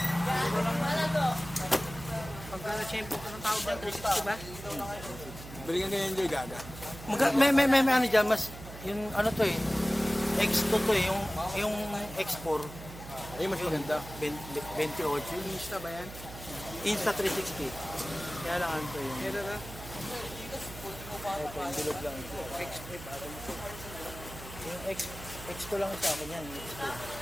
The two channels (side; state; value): right; noise; hum, 13 dB below the sound